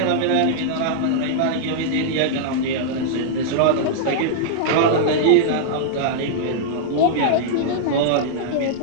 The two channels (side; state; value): both; different; correlation -0.02